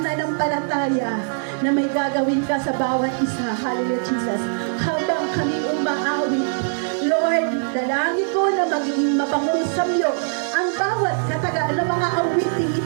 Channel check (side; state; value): left; silent; digital silence